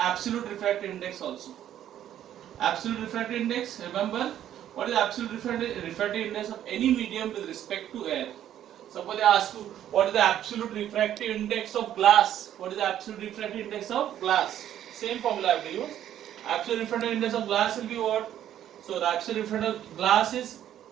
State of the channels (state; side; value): quieter; left; 11.1 dB